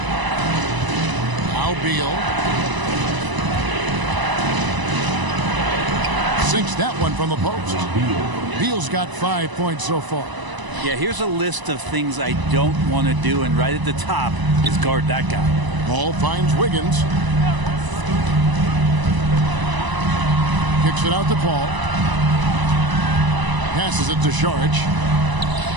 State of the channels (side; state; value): left; late; 1.0 ms